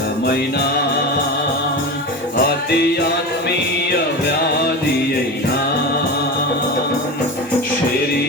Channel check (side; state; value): both; normal; correlation 0.25